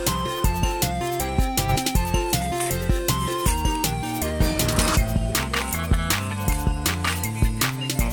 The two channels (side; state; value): both; identical; correlation 1.00